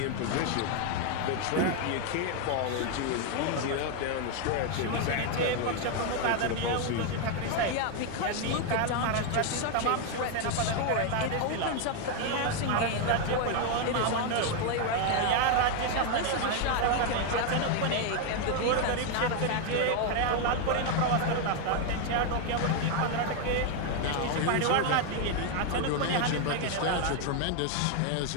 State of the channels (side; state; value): both; different; correlation 0.01